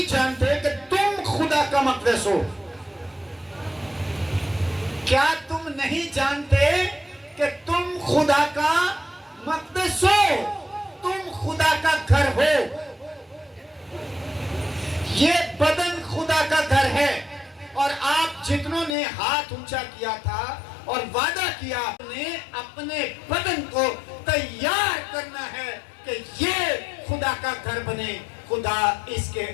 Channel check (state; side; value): drops out; right; at 18.9 s